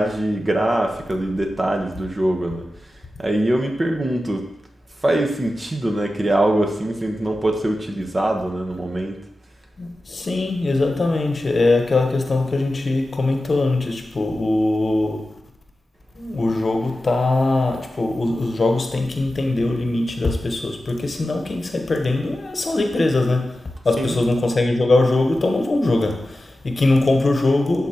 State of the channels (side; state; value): both; normal; correlation 0.93